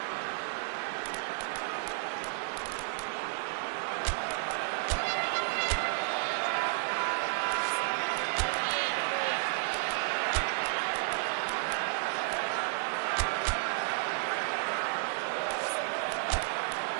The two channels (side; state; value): left; silent; digital silence